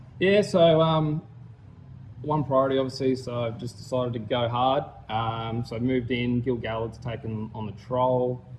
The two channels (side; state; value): both; identical; correlation 1.00